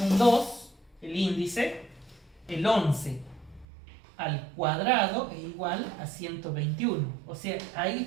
2, el índice, el 11 al cuadrado es igual a 121. O sea,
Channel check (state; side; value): drops out; left; at 3.7 s